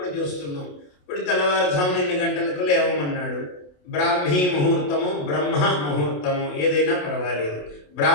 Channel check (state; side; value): late; right; 28 ms